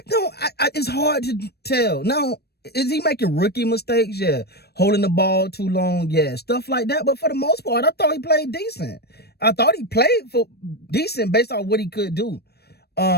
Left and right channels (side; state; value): right; late; 0.47 ms